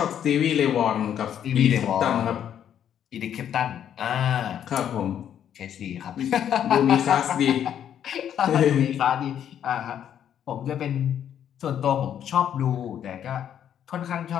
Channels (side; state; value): right; quieter; 9.6 dB